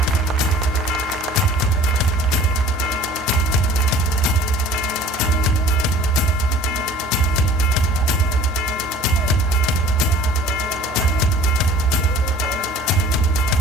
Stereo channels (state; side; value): normal; both; correlation 0.47